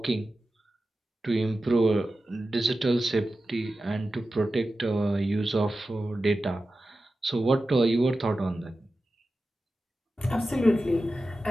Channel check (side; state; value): both; normal; correlation 0.93